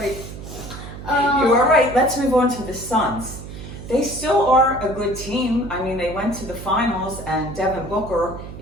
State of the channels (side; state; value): right; noise; hum, 12 dB below the sound